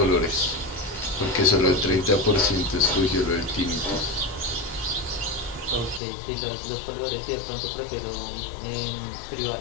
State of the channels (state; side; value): drops out; right; at 6.0 s